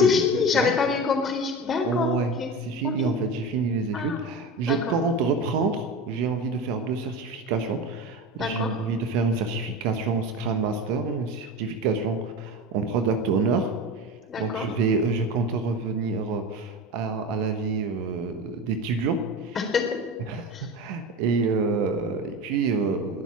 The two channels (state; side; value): normal; both; correlation 0.28